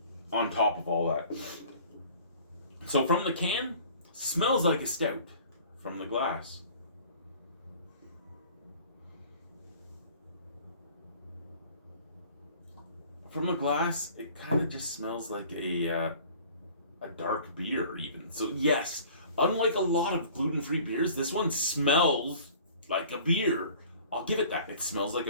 On top of all that. So from the can, smells like a stout. From the glass. From the glass, it kind of just smells like a a dark beer even. So yes, unlike a lot of gluten-free beers, this one smells like a beer. I'll give it that. It smells like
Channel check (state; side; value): inverted; both; correlation -0.49